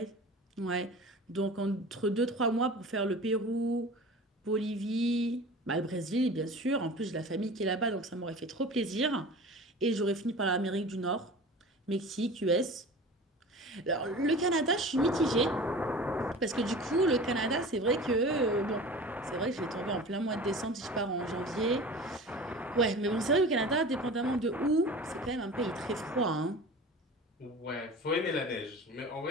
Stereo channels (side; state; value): both; normal; correlation 0.38